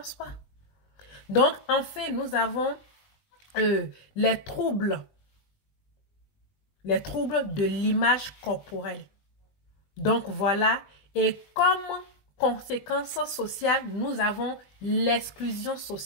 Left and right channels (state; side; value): late; right; 20 ms